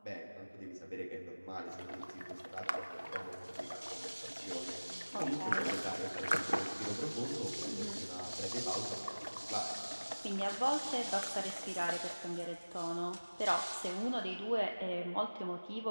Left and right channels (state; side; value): inverted; both; correlation -1.00